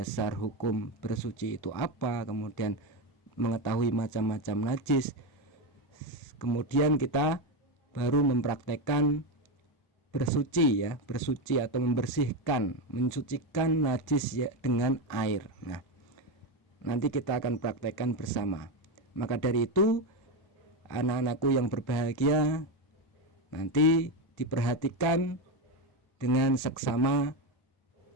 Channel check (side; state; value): right; late; 1.4 ms